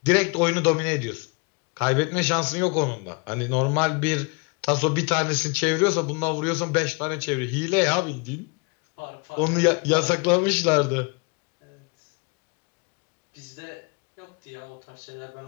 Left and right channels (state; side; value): quieter; right; 31.0 dB